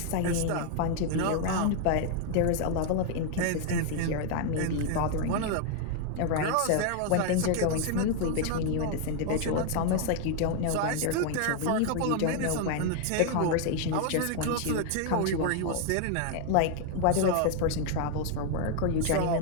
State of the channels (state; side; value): different; both; correlation 0.00